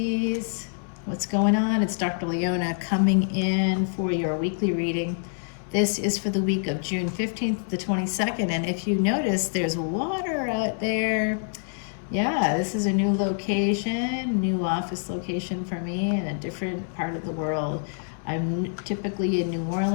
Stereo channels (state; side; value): silent; right; digital silence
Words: What's going on? It's Dr. Leona coming in for your weekly reading. This is for the week of June 15th to the 22nd. And if you notice, there's water out there. Yeah, this is a new location, new office location for me in a different part of the world. I'm typically in New